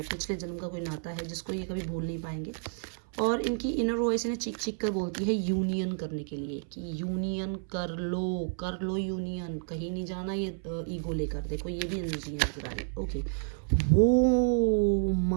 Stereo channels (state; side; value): silent; left; 57 dB below the other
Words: पिछले जन्म का कोई नाता है, जिसको ये कभी भूल नहीं पाएंगे। और इनकी इनर वॉइस इन्हें चीख चीख कर बोलती है यूनियन करने के लिए, कि यूनियन कर लो यूनियन, कहीं नहीं जाना ये ईगो लेकर। देखो, ये भी एनर्जी है नजर आ रही है। ओके, वो